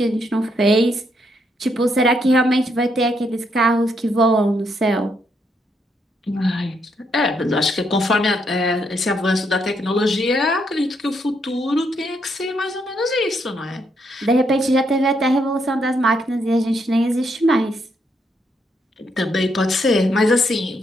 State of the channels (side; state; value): both; normal; correlation 0.76